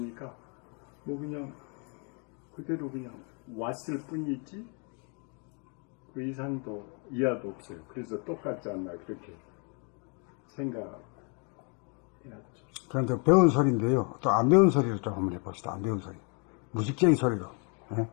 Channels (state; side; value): quieter; right; 36.9 dB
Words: 뭐 그냥 그대로 그냥 왔을 뿐이지 그 이상도 이하도 없어요. 그래서 똑같지 않나 그렇게 생각해야죠. 그런데 배운 소리인데요. 또 안 배운 소리를 좀 한번 해봅시다. 안 배운 소리. 무식쟁이 소리로. 예?